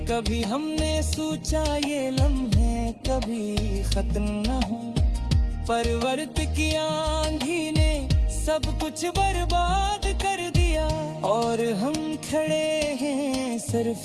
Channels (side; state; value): both; identical; correlation 1.00